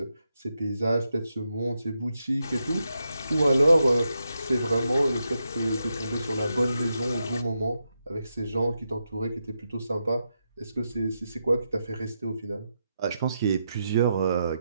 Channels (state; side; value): inverted; both; correlation -0.85